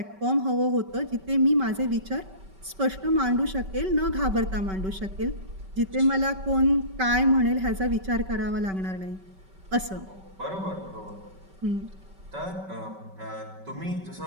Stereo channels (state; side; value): late; left; 5.2 ms